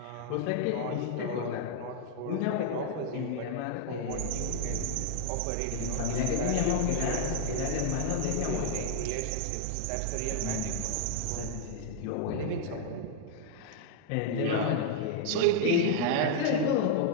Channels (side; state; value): both; different; correlation 0.00